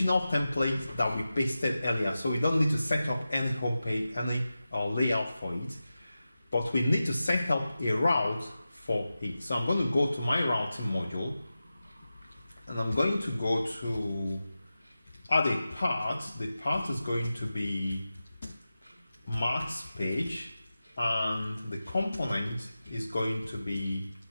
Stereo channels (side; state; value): both; inverted; correlation -0.94